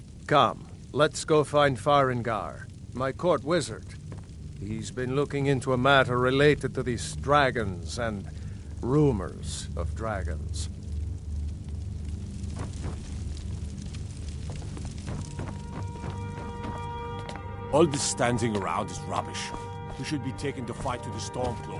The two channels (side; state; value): both; identical; correlation 1.00